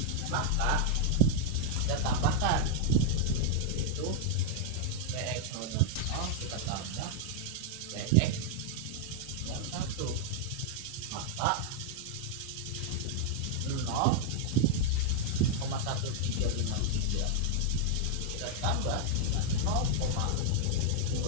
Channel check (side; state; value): both; different; correlation -0.01